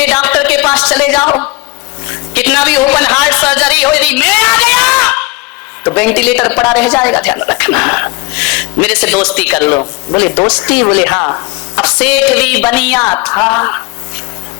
डॉक्टर के पास चले जाओ, कितना भी ओपन हार्ट सर्जरी हो, यदि मैं आ गया तो वेंटिलेटर पड़ा रह जाएगा, ध्यान रखना। मेरे से दोस्ती कर लो। बोले दोस्ती? बोले हाँ। अब सेठ भी बनिया था,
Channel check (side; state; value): right; quieter; 24.1 dB